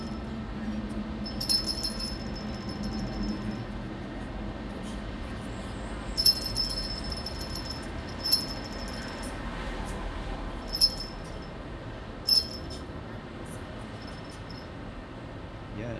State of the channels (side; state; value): both; identical; correlation 1.00